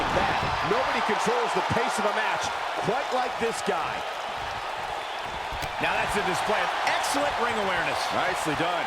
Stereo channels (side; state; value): both; identical; correlation 1.00